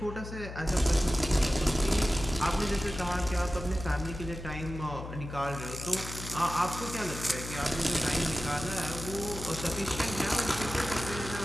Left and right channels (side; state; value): left; noise; hum, 10 dB below the sound